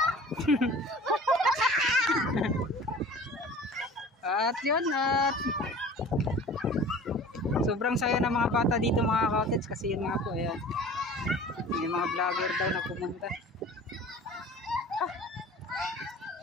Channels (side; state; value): both; normal; correlation 0.43